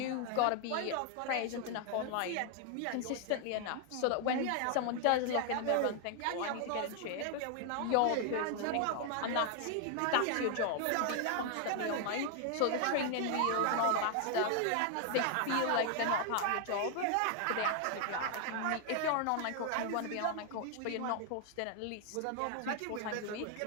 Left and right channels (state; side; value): different; both; correlation 0.00